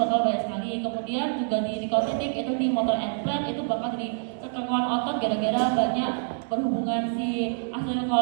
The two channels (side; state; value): left; silent; digital silence